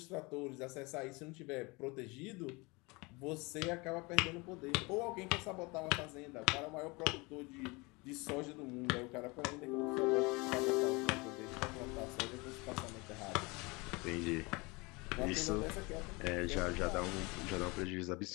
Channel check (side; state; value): right; quieter; 26.1 dB